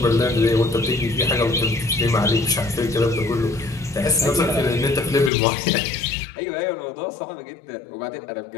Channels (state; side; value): drops out; right; at 5.3 s